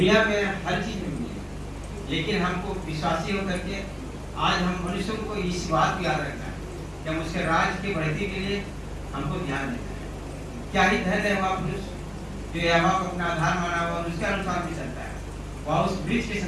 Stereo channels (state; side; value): identical; both; correlation 1.00